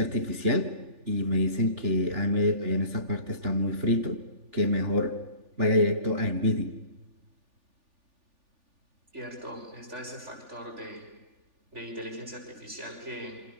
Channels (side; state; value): left; late; 3.4 ms